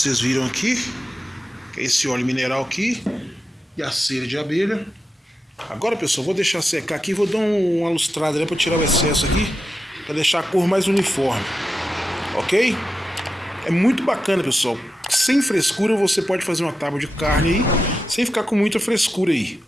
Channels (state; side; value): normal; both; correlation 0.90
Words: viram aqui, que é esse óleo mineral aqui, e a cera de abelha. Agora, pessoal, vou deixar secar aqui, vou dar uma lustrada, né, para tirar o excesso aqui, para deixar a cor mais uniforme, ok? É muito bacana, pessoal. Sem frescura você pode fazer uma tábua de carne aí, sem ficar com muita frescura aí,